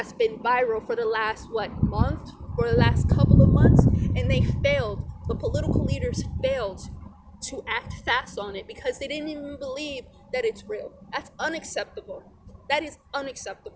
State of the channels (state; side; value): identical; both; correlation 1.00